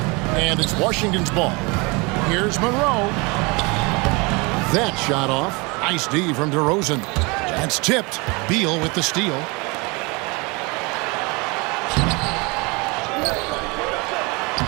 And it's Washington's ball. Here's Monroe. That shot off. Nice D from DeRozan. That's tipped. Beal with the steal.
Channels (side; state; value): left; quieter; 27.6 dB